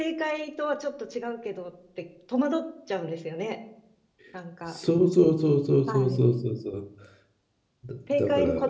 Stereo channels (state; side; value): identical; both; correlation 1.00